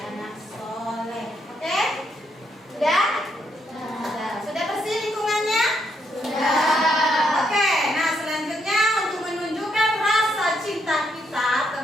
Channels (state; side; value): normal; both; correlation 0.76